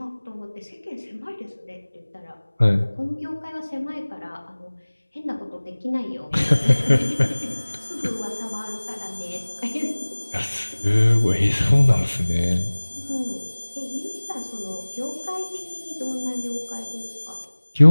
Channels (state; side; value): inverted; both; correlation -1.00